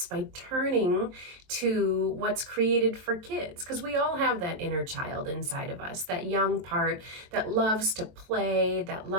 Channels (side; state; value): left; late; 23 ms